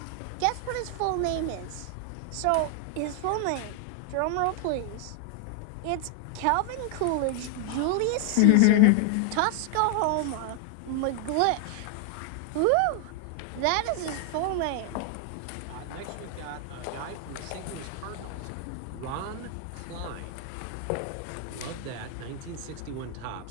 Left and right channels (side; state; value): both; different; correlation 0.00